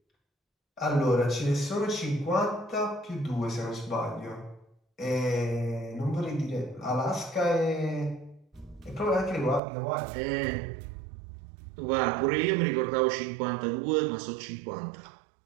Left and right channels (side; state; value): left; drops out; at 9.6 s